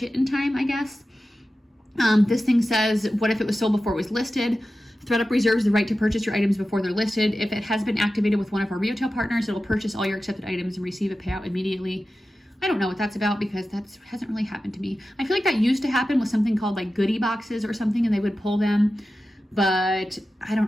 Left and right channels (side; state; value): both; normal; correlation 0.93